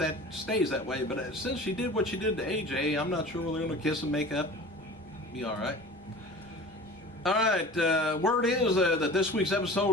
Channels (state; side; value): normal; both; correlation 0.39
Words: stays that way. But since she did what she did to AJ, I'm not sure whether they're going to kiss and make up. Be alright. Alright, word is that this week's